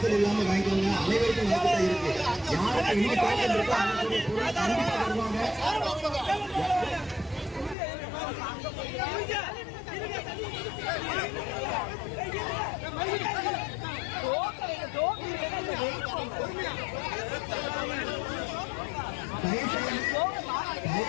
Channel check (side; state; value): right; drops out; at 7.8 s